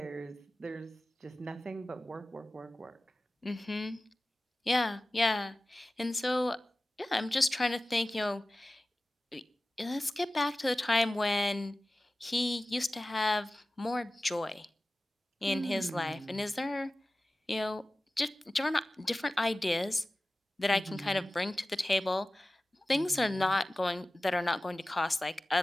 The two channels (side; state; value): both; normal; correlation 0.96